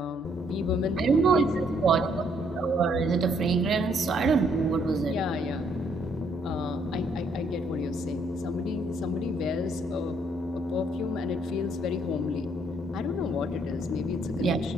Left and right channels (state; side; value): normal; both; correlation 0.69